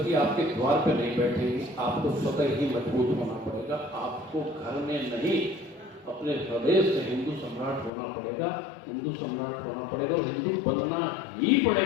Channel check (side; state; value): right; drops out; at 7.9 s